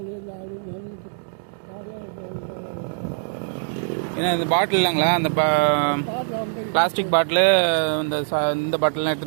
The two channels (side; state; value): left; silent; digital silence